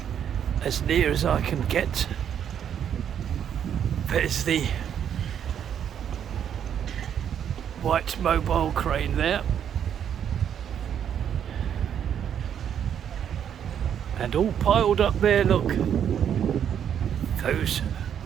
as near as I can get. There's the white mobile crane there. And all piled up there, look, those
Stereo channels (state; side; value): quieter; left; 8.9 dB